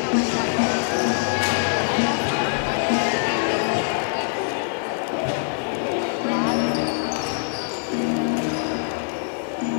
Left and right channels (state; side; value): silent; right; digital silence